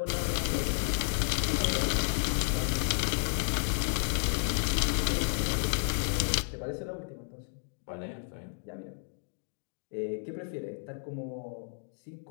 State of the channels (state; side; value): silent; right; 56 dB below the other